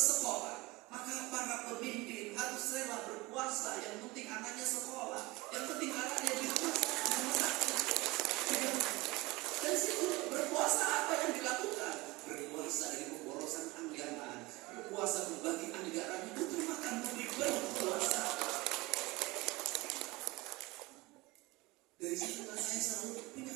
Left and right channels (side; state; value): left; quieter; 22.2 dB